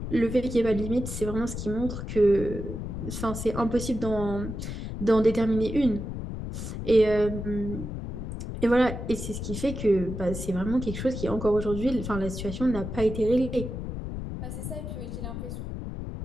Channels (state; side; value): noise; left; rumble, 6 dB below the sound